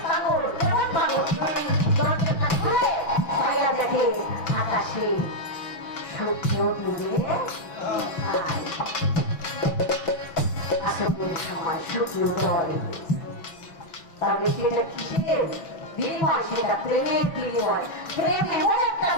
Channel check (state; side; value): late; right; 6.1 ms